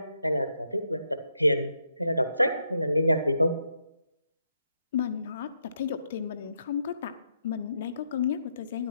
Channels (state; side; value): inverted; both; correlation -0.79